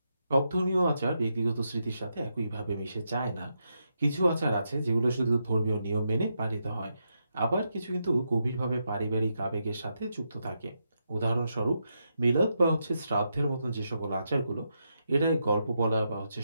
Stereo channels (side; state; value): both; inverted; correlation -0.83